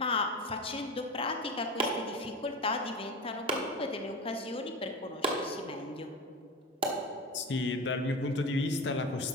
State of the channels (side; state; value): both; normal; correlation 0.26